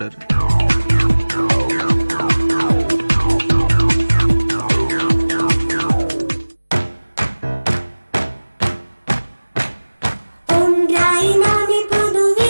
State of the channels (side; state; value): both; inverted; correlation -1.00